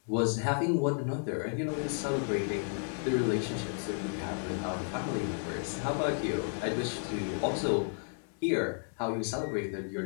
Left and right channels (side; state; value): right; silent; 56 dB below the other